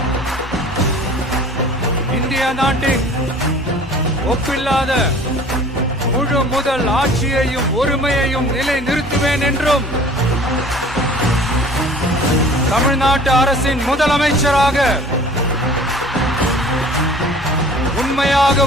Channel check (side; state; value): both; normal; correlation 0.47